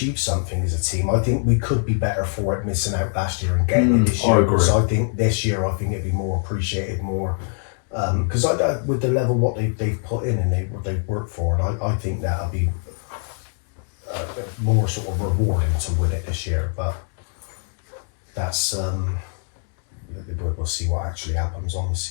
something as a team, I think we could be better for it missing out last year and getting it this year. I agree. So I think this year, it'd be more appreciated, more because with the level what they've put in and what they've worked for, and I think that'll be more sort of rewarding to win it this year. But that's we'll see what actually happens on the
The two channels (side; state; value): right; silent; 56 dB below the other